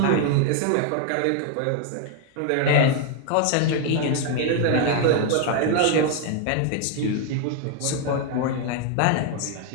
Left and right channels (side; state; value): both; different; correlation 0.00